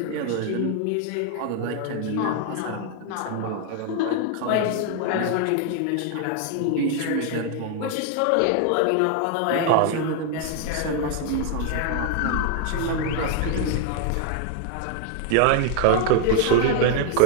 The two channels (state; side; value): different; both; correlation 0.00